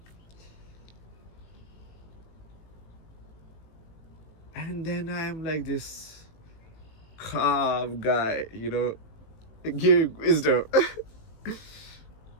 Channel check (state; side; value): late; right; 18 ms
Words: And then I am like this calm guy, giving wisdom.